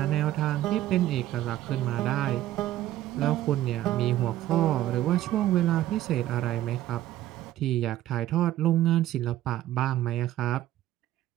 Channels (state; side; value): quieter; left; 13.9 dB